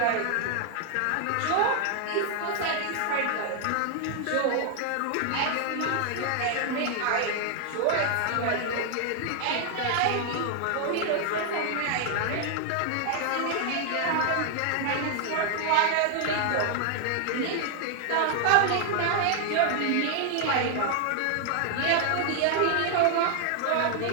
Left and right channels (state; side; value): different; both; correlation 0.00